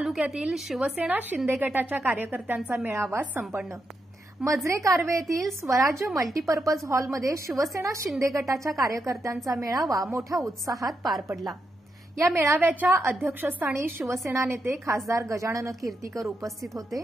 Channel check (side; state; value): both; normal; correlation 0.84